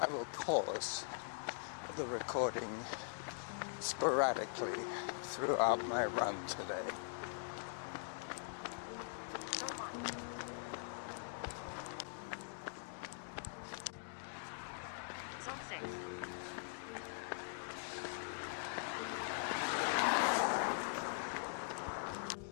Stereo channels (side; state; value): right; silent; digital silence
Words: will pause the recording sporadically throughout my run today. Zone 1. Zone 6.